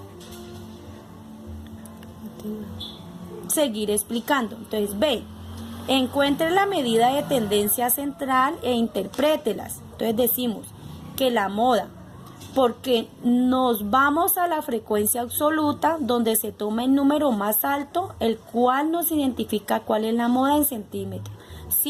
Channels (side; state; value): both; identical; correlation 1.00